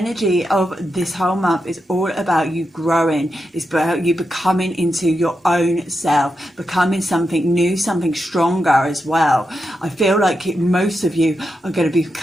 of this whole month is all about you growing. It's about you becoming into your own self, becoming something new, something stronger as well. I feel like most of you are going to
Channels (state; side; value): normal; both; correlation 0.87